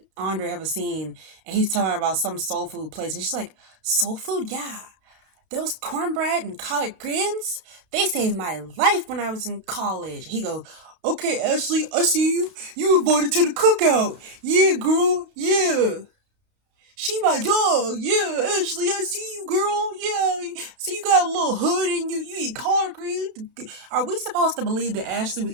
Andre have a scene, and he's telling her about some soul food place, and she's like, soul food, yeah. Those cornbread and collard greens, they saved my life when I was in college. He goes, okay, Ashley, I see you. You invited to the cookout. Yeah, girl, yeah. She my dog. Yeah, Ashley, I see you, girl. Yeah, see you got a little hood and you eat collard greens. Are we supposed to believe that Ashley was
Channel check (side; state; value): left; late; 32 ms